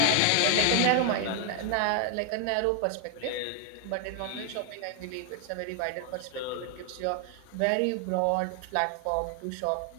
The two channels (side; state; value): both; different; correlation 0.00